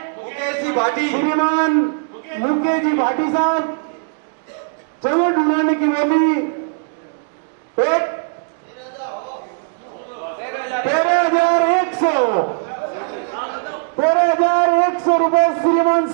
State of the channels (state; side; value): silent; left; digital silence